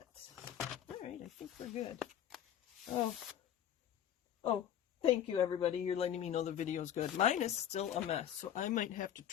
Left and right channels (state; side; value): quieter; right; 10.2 dB